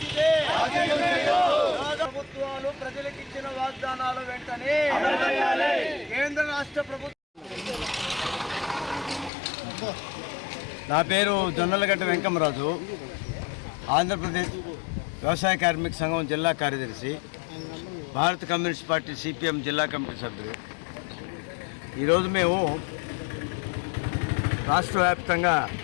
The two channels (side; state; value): right; drops out; at 9.3 s